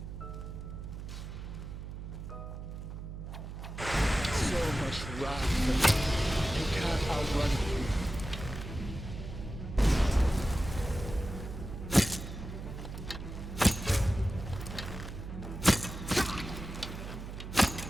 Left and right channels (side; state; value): right; noise; hum, 9 dB below the sound